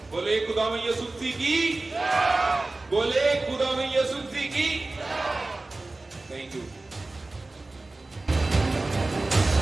بولے خداوند یسوع مسیح کی. بولے خداوند یسوع مسیح کی. Thank you.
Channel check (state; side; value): quieter; left; 3.1 dB